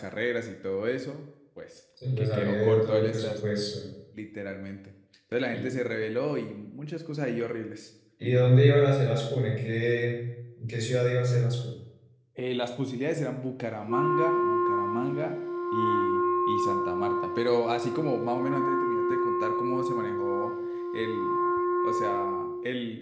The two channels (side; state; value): both; identical; correlation 1.00